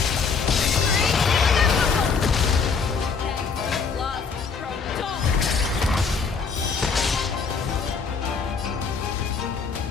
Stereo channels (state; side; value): quieter; right; 5.3 dB